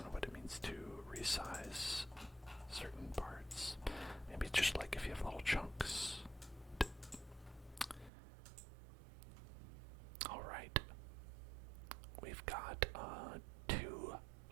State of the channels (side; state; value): left; drops out; at 8.1 s